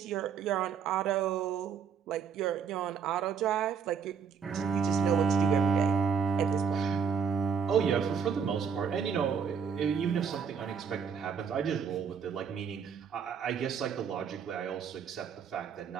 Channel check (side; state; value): left; quieter; 6.6 dB